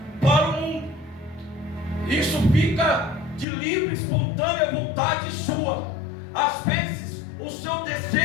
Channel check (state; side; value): drops out; right; at 3.5 s